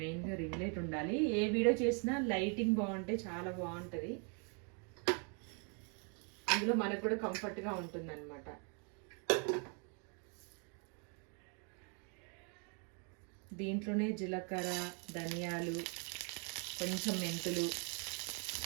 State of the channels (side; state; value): left; quieter; 38.0 dB